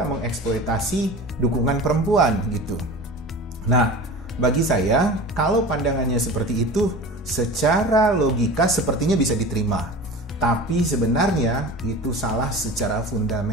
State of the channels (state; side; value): normal; both; correlation 0.35